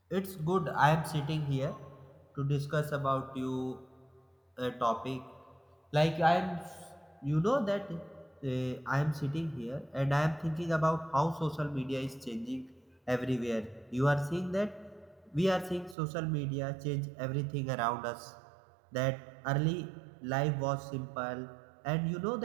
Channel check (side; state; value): left; drops out; at 16.0 s